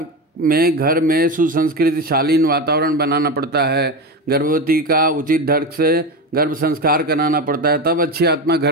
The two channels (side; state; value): both; normal; correlation 0.20